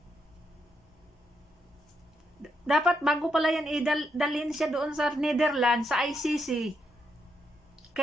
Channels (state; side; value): normal; both; correlation 0.79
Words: Dapat bago pala yan dalhin siya doon sa Netherlands, sa ICC,